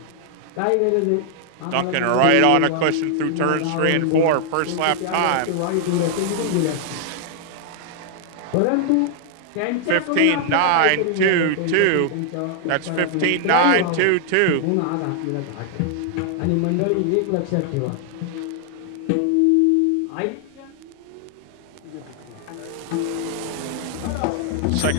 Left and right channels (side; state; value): both; different; correlation 0.00